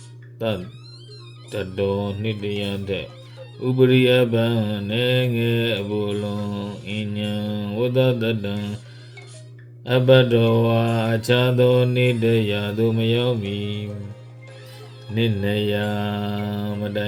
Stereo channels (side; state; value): both; identical; correlation 1.00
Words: တတောနှစ်တယံတဲ့ဥပရိအပံနေငယ်အဘူလုံးအဉ္ဉံဝတ္တတတံအပတောဝါအခြားသောနေတရာသို့မရောက်မီနိနေယမတို